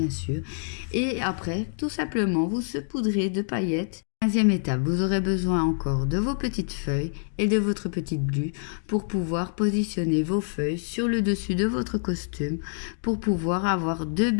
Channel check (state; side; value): silent; right; digital silence